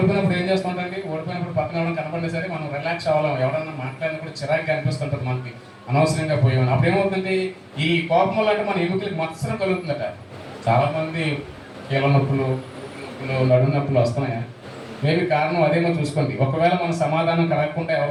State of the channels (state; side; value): identical; both; correlation 1.00